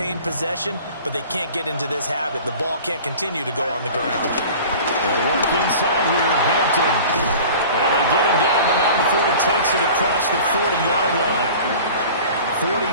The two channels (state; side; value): inverted; both; correlation -0.41